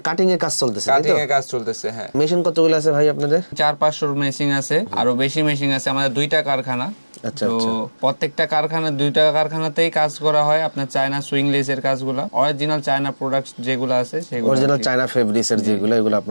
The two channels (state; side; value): inverted; both; correlation -1.00